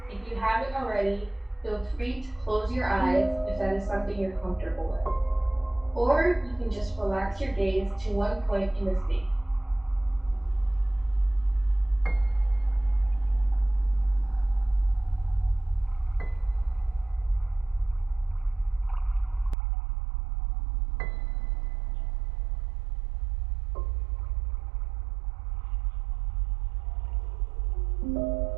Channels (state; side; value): drops out; left; at 19.6 s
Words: If you haven't already, feel free to close your eyes if that is something you're comfortable with. Or you can just relax your gaze to one point in the space.